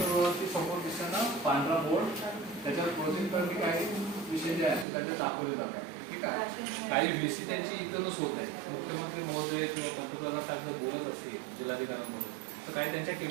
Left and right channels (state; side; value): drops out; left; at 4.9 s